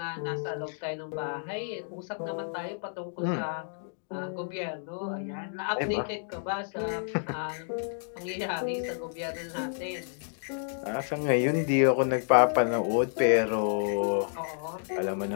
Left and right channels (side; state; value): right; silent; digital silence